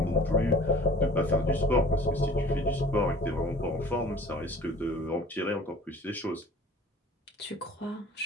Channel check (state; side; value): normal; both; correlation 0.47